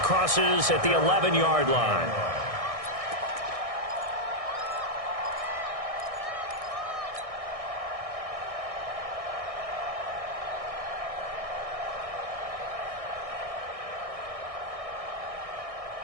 crosses at the 11-yard line.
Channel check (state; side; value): late; left; 1.6 ms